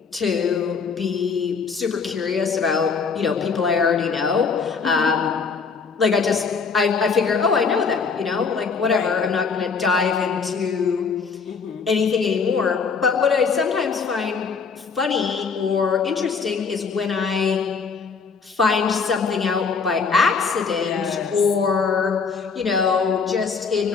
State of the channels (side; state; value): right; quieter; 5.3 dB